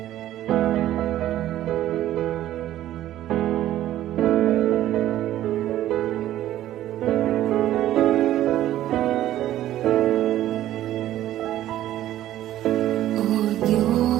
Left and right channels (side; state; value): left; quieter; 13.3 dB